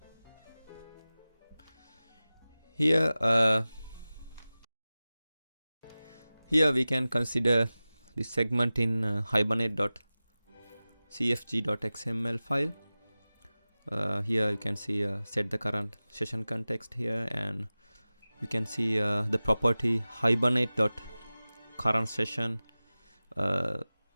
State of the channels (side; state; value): both; inverted; correlation -0.97